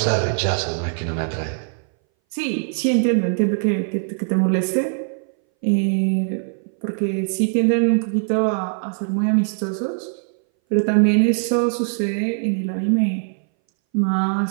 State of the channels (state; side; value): silent; left; 61 dB below the other